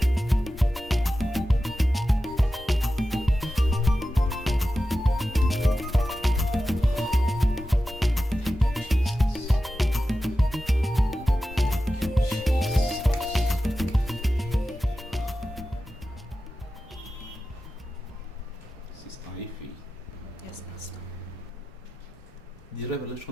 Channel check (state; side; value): normal; both; correlation 0.93